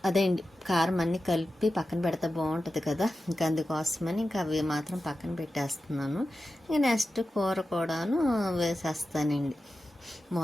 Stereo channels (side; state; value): both; normal; correlation 0.93